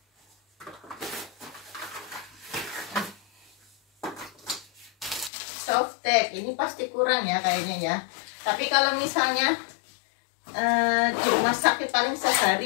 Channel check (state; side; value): drops out; right; at 5.3 s